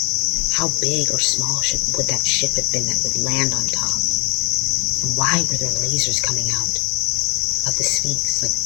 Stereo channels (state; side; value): quieter; right; 30.2 dB